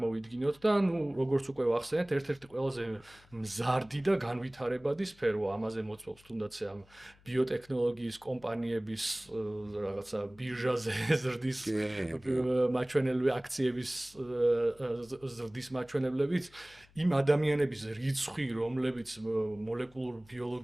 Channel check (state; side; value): noise; left; hum, 28 dB below the sound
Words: და ну როგორც უკვე ვახსენეთ, ერთ-ერთი ყველაზე მზარდი და განვითარებადი სფერო, ამაზე მოწმობს თუნდაც ამ ბიოტექნოლოგიის კომპანიების რაღაცა ბირჟაზე ზრდის მაჩვენებლები აქციების ზრდის მაჩვენებლებით იმ ადამიანების რიცხვი, რომლებიც მოლეკულურ